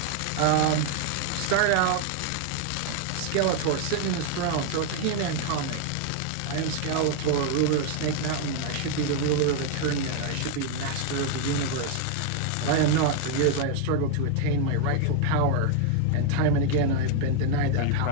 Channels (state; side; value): different; both; correlation 0.00